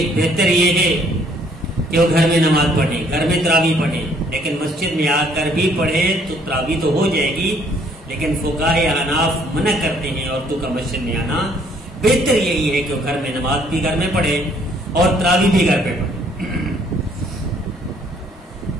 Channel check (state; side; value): normal; both; correlation 0.63